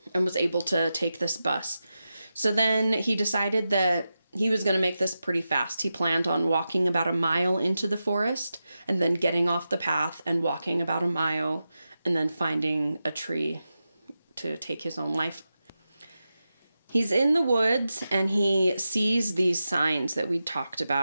and was able to take this bus. So then he decided that he was going to make this pretty fast. He planned on walking about a mile into the forest and then getting off the path and walking about a mile and then finding a tree to take his own life. He's in the woods and he sees these signs that we talked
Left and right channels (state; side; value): inverted; both; correlation -0.91